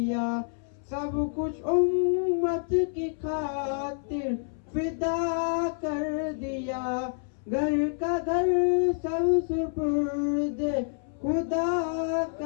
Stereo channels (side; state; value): right; silent; 59 dB below the other